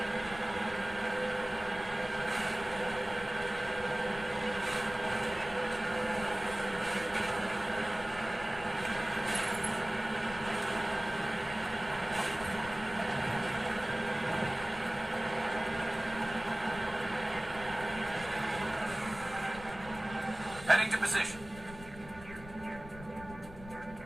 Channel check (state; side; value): noise; left; rumble, 15 dB below the sound